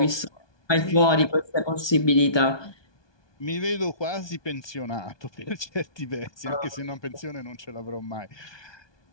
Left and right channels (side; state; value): right; late; 1.2 ms